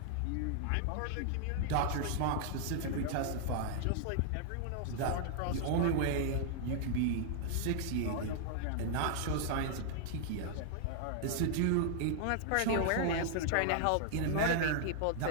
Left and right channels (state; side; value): different; both; correlation -0.01